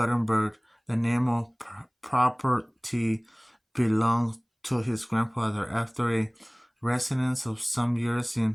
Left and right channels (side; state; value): both; identical; correlation 1.00